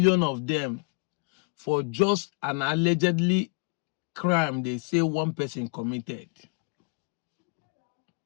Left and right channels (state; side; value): quieter; right; 36.9 dB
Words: of them, for just an allegedly crime they say one person committed?